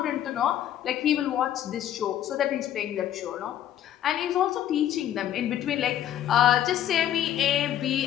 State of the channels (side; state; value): right; quieter; 11.3 dB